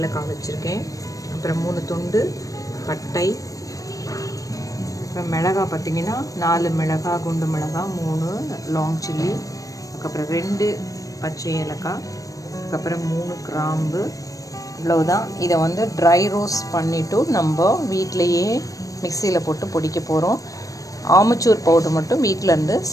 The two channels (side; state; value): right; late; 0.16 ms